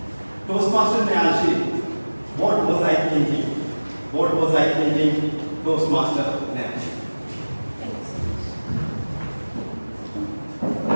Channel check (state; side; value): inverted; both; correlation -1.00